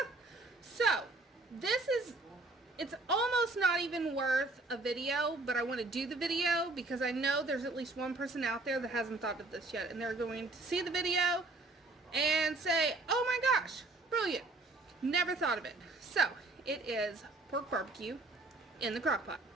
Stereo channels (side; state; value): left; quieter; 3.2 dB